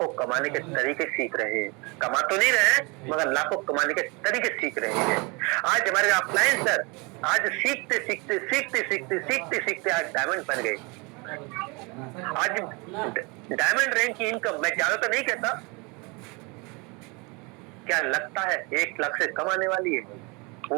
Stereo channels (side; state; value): left; quieter; 28.8 dB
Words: कमाने के तरीके सीख रहे हैं। कमा तो नहीं रहे हैं, मगर लाखों कमाने के तरीके सीख रहे हैं। आज हमारे अपलाइन सर आज सीखते आज डायमंड बन गए। आज डायमंड रैंक की इनकम, मैं ज्यादा तो नहीं कहता, क्या लगता है 1 लाख से कम आने वाली है?